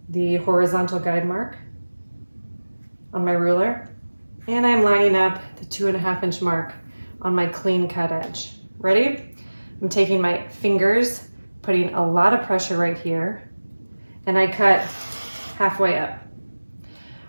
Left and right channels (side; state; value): both; inverted; correlation -1.00